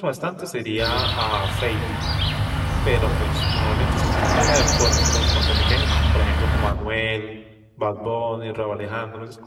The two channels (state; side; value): identical; both; correlation 1.00